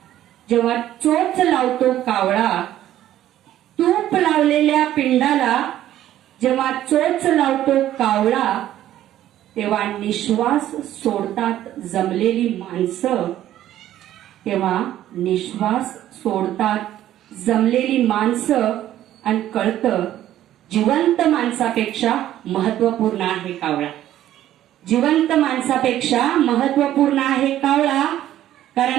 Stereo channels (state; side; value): quieter; left; 12.6 dB